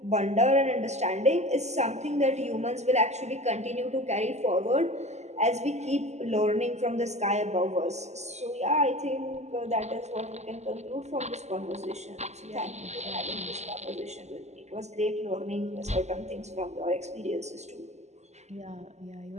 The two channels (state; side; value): late; left; 0.33 ms